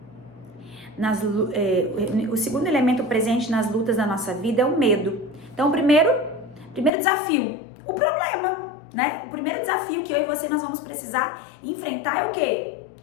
o segundo elemento presente nas lutas da nossa vida é o medo. Então, o primeiro desafio, o problema, né? O primeiro desafio que eu e você nós vamos precisar enfrentar é o quê?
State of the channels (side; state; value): right; drops out; at 6.9 s